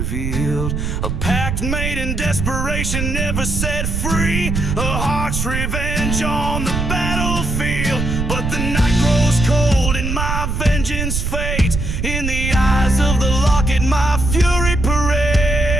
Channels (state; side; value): noise; right; rumble, 2 dB below the sound